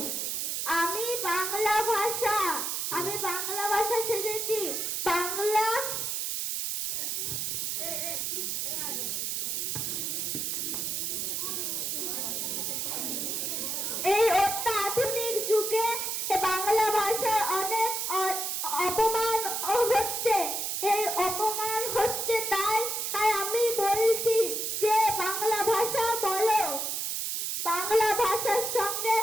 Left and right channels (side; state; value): right; noise; hiss, 1 dB below the sound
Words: আমি বাংলা ভাষা শিখেছি। বাংলা এই অত্যাধুনিক যুগে বাংলা ভাষার অনেক অপমান হচ্ছে। এই অপমান হচ্ছে, তাই আমি বলছি যে বাংলা ভাষা বলো। বাংলা ভাষার সঙ্গে